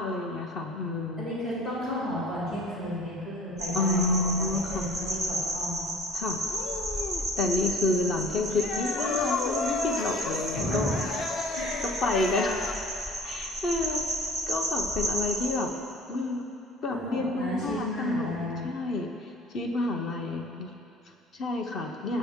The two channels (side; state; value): both; normal; correlation 0.47